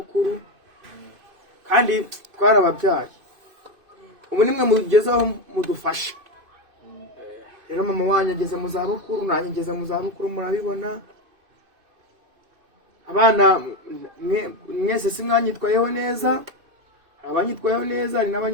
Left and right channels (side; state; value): left; late; 2.6 ms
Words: kandi twarababyaye ubu nimwe mugezaho mudufasha rero mama wanyu ageze mu zabukuru nanjye ngeze mu zabukuru murabibona abana mwese si mwanyitwayeho neza abanyitwayeho neza hari